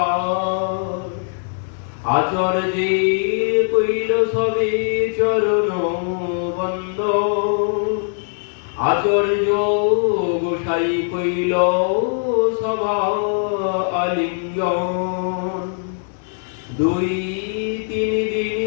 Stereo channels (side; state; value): right; silent; digital silence